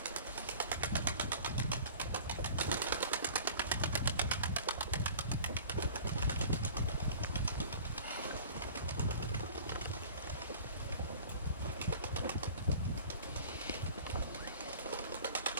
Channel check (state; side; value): inverted; both; correlation -0.44